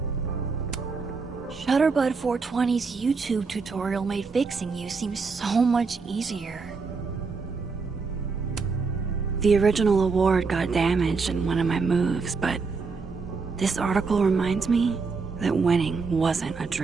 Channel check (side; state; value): left; quieter; 4.7 dB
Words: Shutterbud 420's YouTube tutorial made fixing you seem so much easier. The original award got damaged in one of my moves, but this article reminds me that winning wasn't a